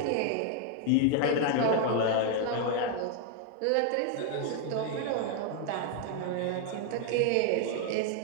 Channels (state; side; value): different; both; correlation 0.00